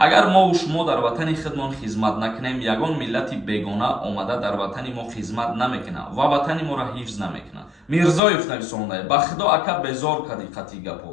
мо шумо дар ватани худмон хизмат накунем, ягон миллати бегона омада дар ватани мо хизмат намекунад ва ватани моро ҳифз намекунад. Мирзоев нависондай: ба худо ака безор кади қатъи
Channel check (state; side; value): drops out; right; at 8.2 s